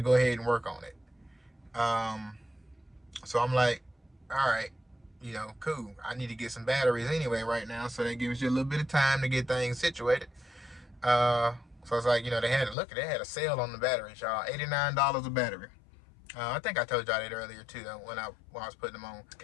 go ahead and work on it. So I'm like, all right, cool. I need to get some batteries anyway right now, so that gives you a little bit of time to get things situated. So it's like, they had a sale on the batteries, y'all. $89 a battery. I think I told y'all that earlier too, when I was putting them on.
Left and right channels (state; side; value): drops out; right; at 12.8 s